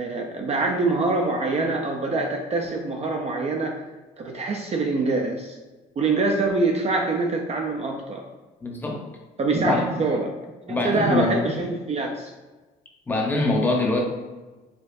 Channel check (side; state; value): both; normal; correlation 0.43